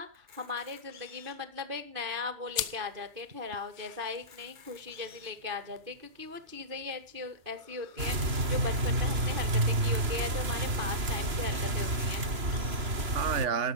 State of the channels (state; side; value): late; left; 3.0 ms